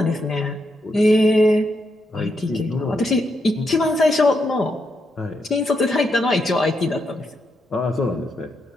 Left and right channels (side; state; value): both; normal; correlation 0.81